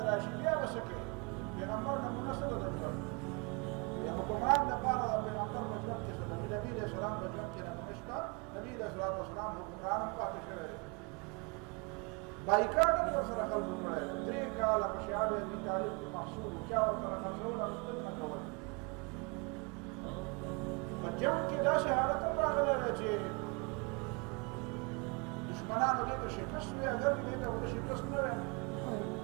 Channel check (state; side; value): quieter; left; 31.9 dB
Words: راشي بیا به څه کوي پیغمبر نمونه څه ده د ژوند د حکمران دپاره د پیغمبر په ژوند کې څه ده نبي علیه السلام په ژوند کې نمونه شته. نبي علیه السلام حکمران هم پاتې شوی دی. بایکاټ هم ورسره خلکو کړی دی. 3 کاله په شیعه ابي طالب کې محصول چا ورسره خرڅول او نه کول. په جنګ کې داسې حالت هم راغلی دی چې دشمنانو دې ته شکست وی اگر دې ته ورته شکست نه وی